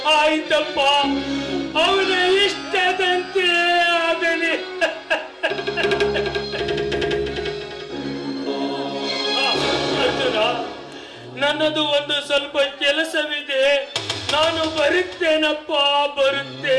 ಆಯ್ತಪ್ಪ, ಅವನ ಇಷ್ಟದಂತೆ ಆಗಲಿ. ಅರ್ಜುನ, ನನ್ನದು ಒಂದು ಸ್ವಲ್ಪ ಕೆಲಸವಿದೆ, ನಾನು ಬರುತ್ತೇನಪ್ಪ,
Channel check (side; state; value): both; identical; correlation 1.00